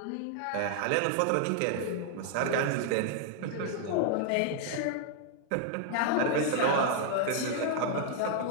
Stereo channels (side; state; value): both; different; correlation -0.01